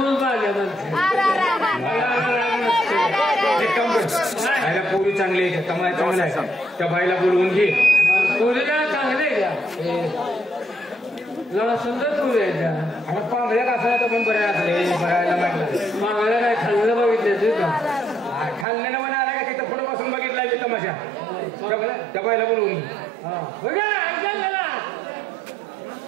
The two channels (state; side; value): drops out; left; at 18.7 s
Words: पाहिजे पोरी चांगली आहे कमाई चांगला आहे त्या बाईला बोलवून घे. पोरीला चांगले का जरा सुंदर पोरी आहे त्या. आता पांगळ्या कसं तर पण बऱ्या असले बघायला म्हटलं मागायला काय खाल्लं बघितलं का खाल्लेलं मला आला का तिथं पुढे बसून बघितला मी तमाशा त्या बाईला बोलवून